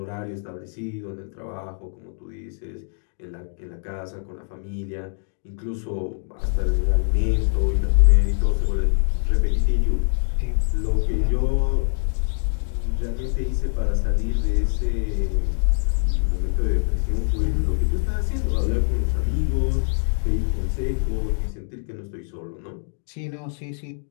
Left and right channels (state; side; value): silent; right; digital silence